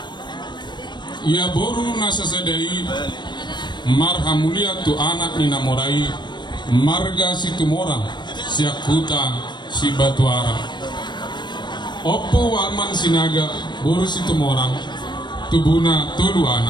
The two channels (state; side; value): late; right; 0.22 ms